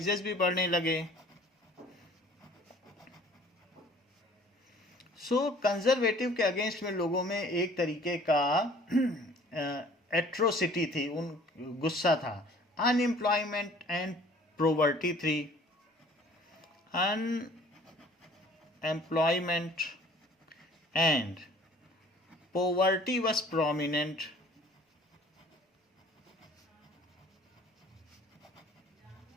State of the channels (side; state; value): both; normal; correlation 0.52